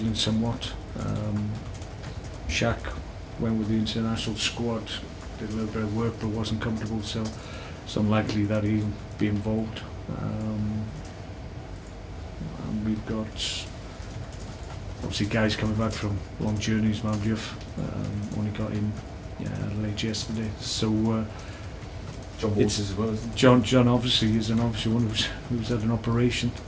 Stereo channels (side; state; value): both; identical; correlation 1.00